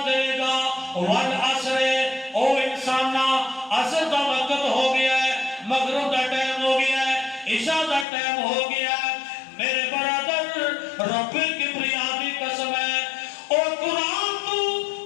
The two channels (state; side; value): drops out; right; at 8.1 s